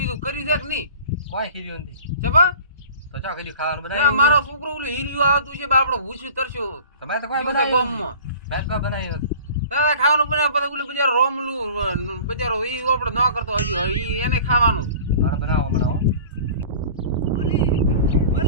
કર્યું છે કે નહીં? કોઈ ખીર્યું નથી ચબા તો ચા ખીર્યું ખાવાનું ના બનાવ્યું મારો છોકરો ઓલું હીરિયું આવતું છે બાપડો ભૂસ્યું તરસ્યો તમે તો કોઈ જીવશે બનાવ્યું ગામમાં. મેં કોઈ બનાવ્યું નથી. દાદા ખાવાનું બનાવે પછી ઓલું બજારો રોમલું બજારો ઈ આપણે ન કરતો હજી ઈ એને ખાવાનું. હાલો બનાવો બનાવો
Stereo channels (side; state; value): both; inverted; correlation -0.43